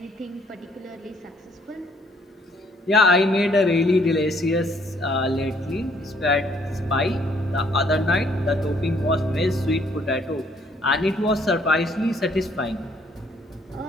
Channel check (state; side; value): normal; both; correlation 0.65